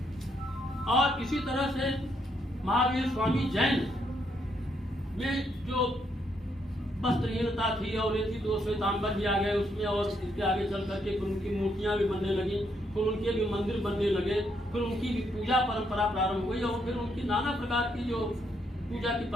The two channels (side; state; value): both; normal; correlation 0.75